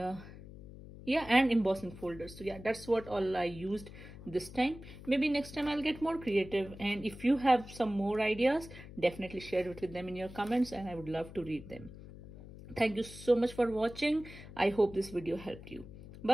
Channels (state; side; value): noise; left; hum, 15 dB below the sound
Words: yeah, and embossing folders. So yeah, that's what all I used this time. Maybe next time I'll get more creative, and if you have some more ideas, definitely share it with them in your comments, and I would love to read them. Thank you so much for watching. I hope this video helped you.